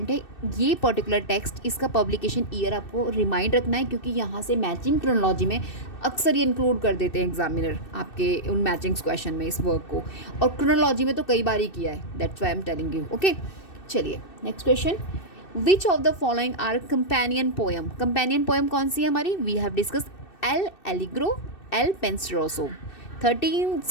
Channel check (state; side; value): late; right; 2.6 ms